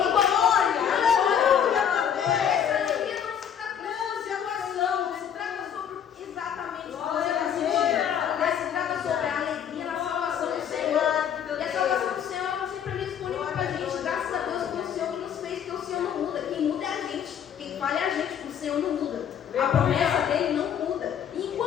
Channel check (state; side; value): quieter; right; 8.6 dB